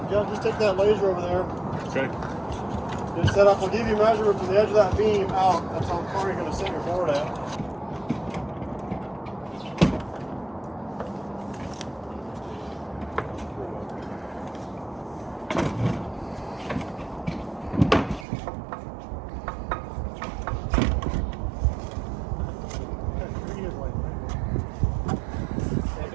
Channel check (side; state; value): left; drops out; at 18.2 s